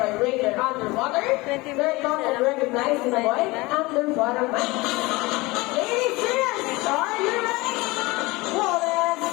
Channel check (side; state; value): right; quieter; 22.6 dB